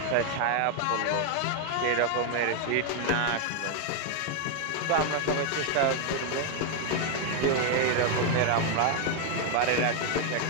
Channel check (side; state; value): both; different; correlation 0.01